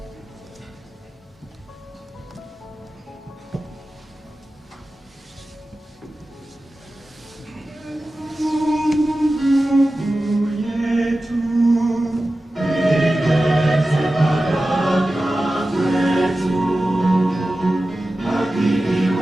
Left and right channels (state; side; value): normal; both; correlation 0.94